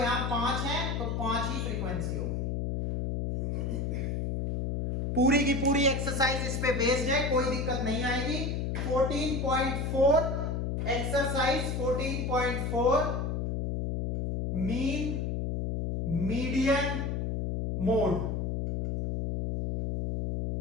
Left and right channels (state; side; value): noise; left; hum, 1 dB below the sound